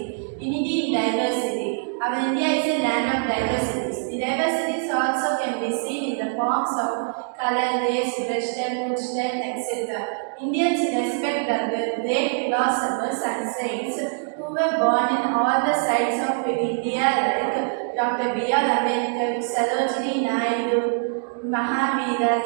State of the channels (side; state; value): left; silent; digital silence